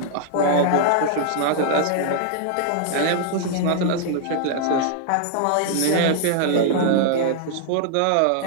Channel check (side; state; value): both; different; correlation 0.00